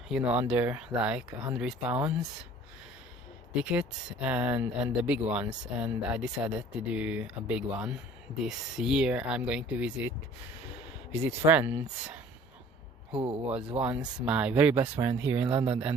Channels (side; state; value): both; normal; correlation 0.50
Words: under like £100 tickets, and the big ones, and I decided to do a big one. This year I'm going to visit friends who was once my very best friend here in London